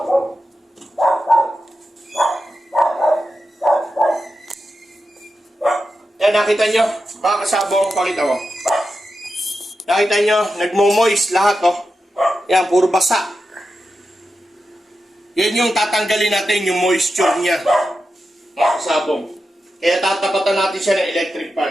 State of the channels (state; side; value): normal; both; correlation 0.90